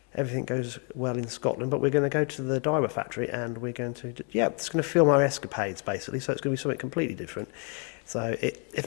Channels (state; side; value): quieter; right; 36.9 dB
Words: everything goes well in Scotland. But we're going to go to the diver factory and we're going to, it's going to film our escapades, basically. So it's going to be something completely different. So if